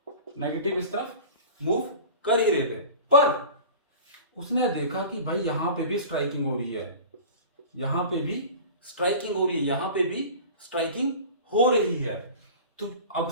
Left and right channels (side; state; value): both; inverted; correlation -0.37